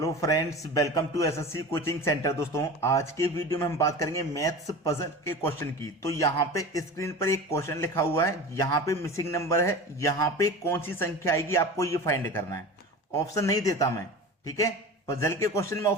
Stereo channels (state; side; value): normal; both; correlation 0.33